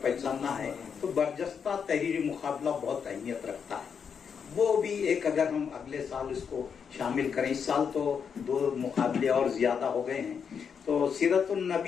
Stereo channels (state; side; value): quieter; right; 6.8 dB